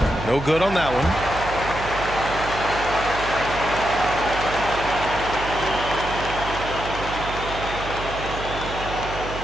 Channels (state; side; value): noise; right; hum, 9 dB below the sound